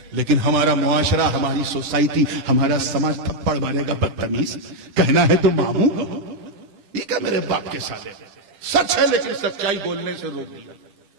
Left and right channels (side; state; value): left; late; 10 ms